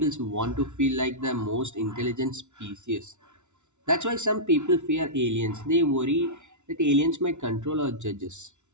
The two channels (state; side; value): late; left; 0.83 ms